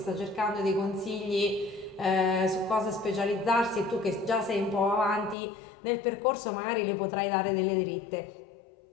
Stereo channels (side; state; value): right; drops out; at 5.4 s